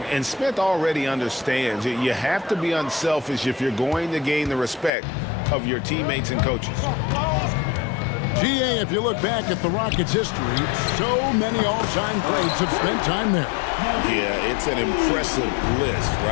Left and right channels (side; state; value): right; drops out; at 4.9 s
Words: And Smith already understands you have to be unselfish if you're going to gain the respect of your teammates and coaches. GA, if you look back at the Rockets' history, so many all-time greats have spent time there. Yeah, it's an impressive list,